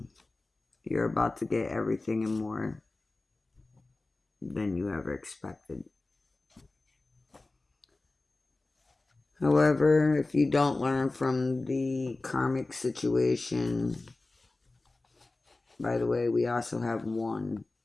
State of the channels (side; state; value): right; quieter; 3.2 dB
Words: you're about to get everything and more than you ever expected. However, if you don't learn from the karmic situation, by the way, we also have one.